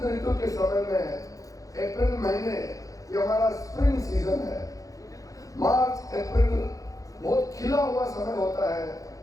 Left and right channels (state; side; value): late; right; 0.17 ms